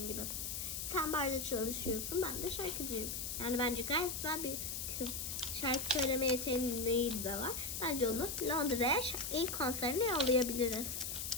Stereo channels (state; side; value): noise; left; hiss, 4 dB below the sound